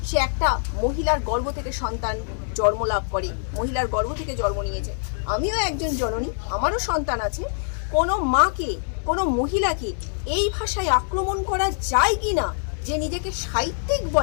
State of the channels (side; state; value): right; silent; digital silence